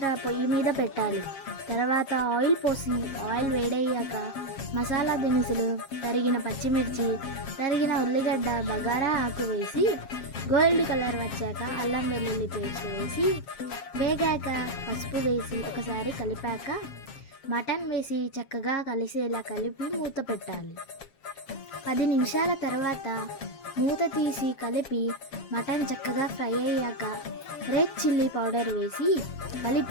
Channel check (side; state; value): right; late; 7.4 ms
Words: పొయ్యి మీద పెట్టాలి. తర్వాత ఆయిల్ పోసి ఆయిల్ వేడయ్యాక మసాలా దినుసులు, తరిగిన పచ్చిమిర్చి, తరిగిన ఉల్లిగడ్డ, బగారా ఆకు వేసి గోల్డ్ కలర్ వచ్చాక అల్లం వెల్లుల్లి పేస్ట్ వేసి వేగాక పసుపు వేసి ఒకసారి కలిపాక మటన్ వేసి చక్కగా కలిసేలా కలిపి మూత పెట్టాలి. 10 నిమిషాల తర్వాత మూత తీసి కలిపి మటన్ చక్కగా ఫ్రై అయ్యాక రెడ్ చిల్లీ పౌడర్ వేసి